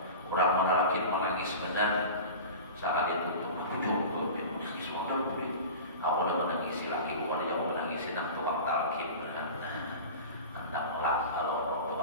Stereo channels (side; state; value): both; inverted; correlation -0.34